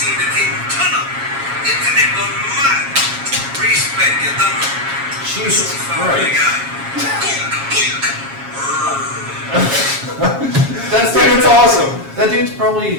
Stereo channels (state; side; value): late; left; 7.3 ms